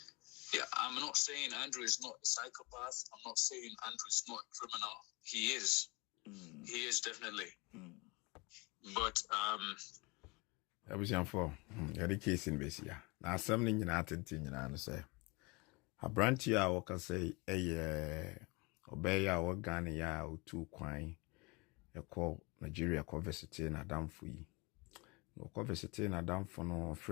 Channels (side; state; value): right; quieter; 26.8 dB